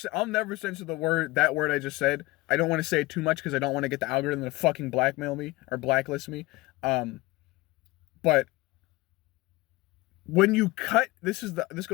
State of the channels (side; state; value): right; quieter; 21.0 dB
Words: that word I just said. I don't want to say it too much because I don't want to get the algorithm to fucking blackmail me or blacklist me. But when you cut, this